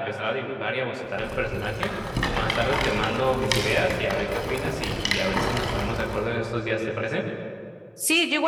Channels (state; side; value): identical; both; correlation 1.00